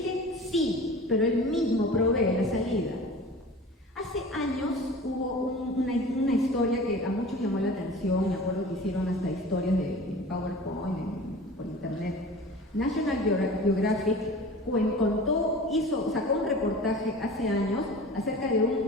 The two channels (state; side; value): normal; both; correlation 0.39